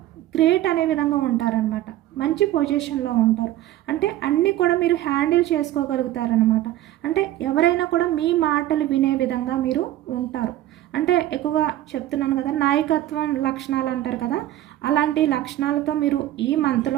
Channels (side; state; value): left; quieter; 14.0 dB